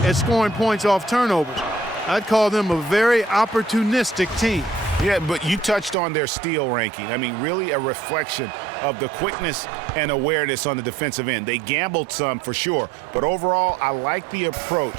at scoring points off turnovers. I'd call them a very opportunistic team. Yeah, but you touched on their steal ranking. I mean, really a reflection of the quickness and awareness on the defensive end. They gambled some for sure, but overall, I like the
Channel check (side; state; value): left; drops out; at 6.0 s